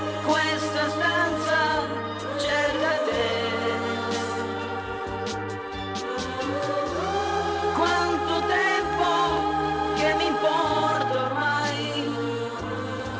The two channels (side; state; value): both; identical; correlation 1.00